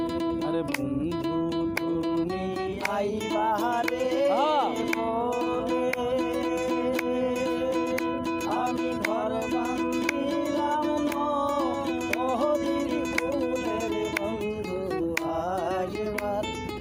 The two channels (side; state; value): both; identical; correlation 1.00